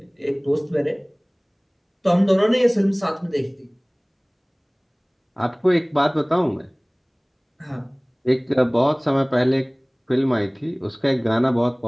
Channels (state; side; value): identical; both; correlation 1.00